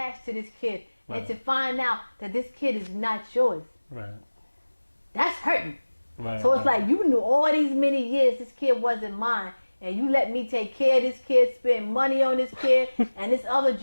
to this kid. And Right. to find out that this kid is not yours, Right. that's hurting. Right. So it's like you knew all these many years this kid wasn't mine. And you let me take care of this kid, spend money on this kid, and this other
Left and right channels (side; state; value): both; inverted; correlation -1.00